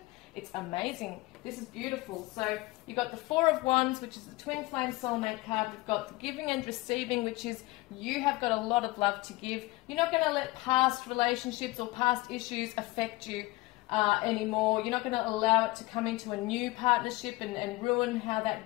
It's amazing. This is beautiful. So you've got the Four of Wands, which is the Twin Flame soulmate card. We've got the giving and receiving, which is you have got a lot of love to give. You're not going to let past relationships or past issues affect you anymore. You're not going to allow it to come into a new partnership and ruin how that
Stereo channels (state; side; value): quieter; right; 21.0 dB